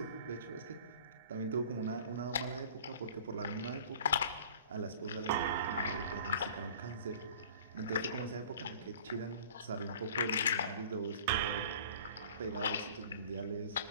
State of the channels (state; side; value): inverted; both; correlation -0.46